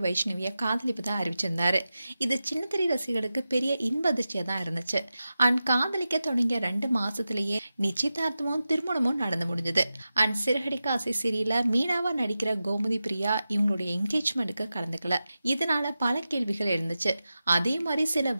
வைஷ்ணவியை காதலிப்பதா அறிவிச்சிருந்தாரு. இது சின்னத்திரை ரசிகர்களுக்கு பெரிய இன்ப அதிர்ச்சியா தான் இருந்துச்சு. அண்ட் காதலிக்க தொடங்கிய 2 மாசத்திலேயே நிச்சயதார்த்தமும் திருமணமும் நடந்து முடிஞ்சது. அண்ட் சிறகடிக்க ஆசை சீரியல்ல மீனாவா நடிக்கிற கோமதி பிரியா இவங்களுடைய என்கேஜ்மெண்ட்டுக்கு கலந்துக்கல. இதனால பல கேள்விகள் இருந்துச்சு. அதே மாதிரி சில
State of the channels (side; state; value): both; inverted; correlation -0.93